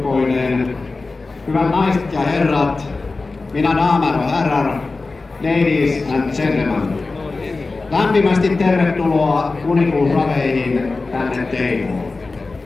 hyvät naiset ja herrat, mina damer och herrar, ladies and gentlemen. Lämpimästi tervetuloa kuninkuusraveihin tänne Teivoon.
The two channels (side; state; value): right; quieter; 3.7 dB